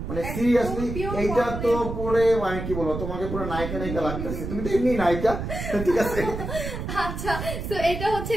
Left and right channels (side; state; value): right; noise; rumble, 6 dB below the sound